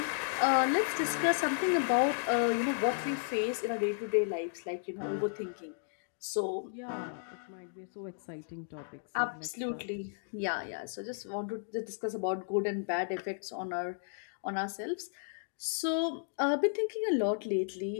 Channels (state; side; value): silent; right; digital silence